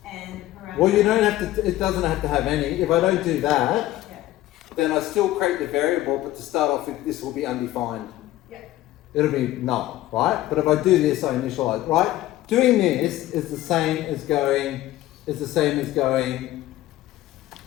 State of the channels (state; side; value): quieter; right; 15.3 dB